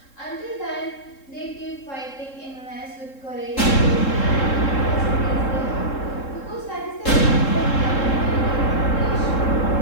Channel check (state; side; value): late; right; 3.7 ms